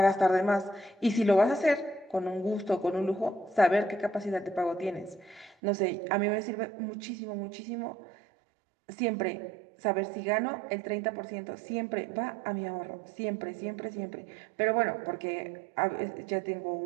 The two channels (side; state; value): left; drops out; at 5.6 s